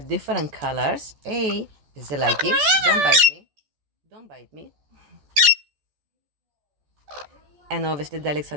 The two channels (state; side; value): late; left; 14 ms